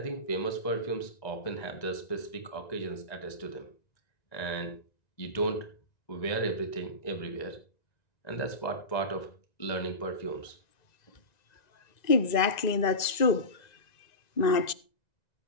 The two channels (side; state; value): right; late; 1.9 ms